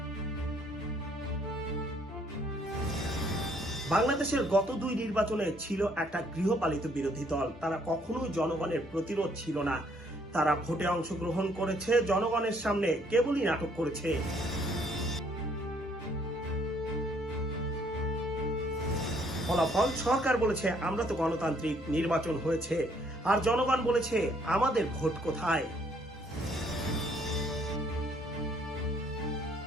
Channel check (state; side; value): normal; both; correlation 0.65